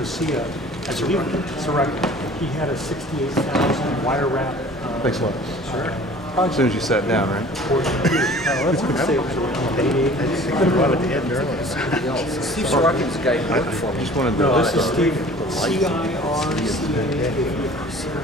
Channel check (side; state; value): both; normal; correlation 0.47